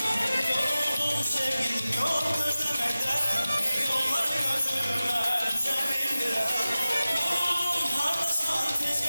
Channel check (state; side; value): inverted; both; correlation -0.95